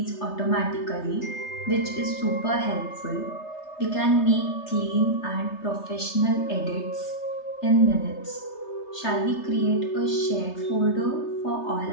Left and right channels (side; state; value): right; late; 3.3 ms